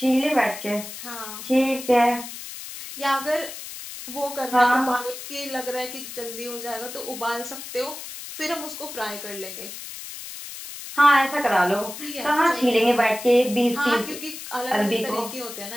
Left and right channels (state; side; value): noise; left; hiss, 11 dB below the sound